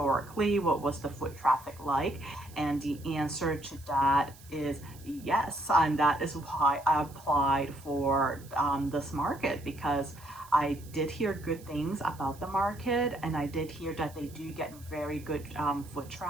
What was the foot traffic like? And the answer to that is yes. And that is why I applied for this market, because I did hear good things about the market, and I did hear that they do get very good foot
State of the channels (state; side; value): noise; right; hiss, 22 dB below the sound